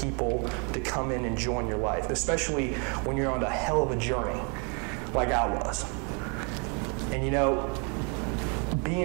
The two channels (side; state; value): left; quieter; 35.8 dB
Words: to come in and join your life, especially when you're on a hell of a journey like I was. And you know,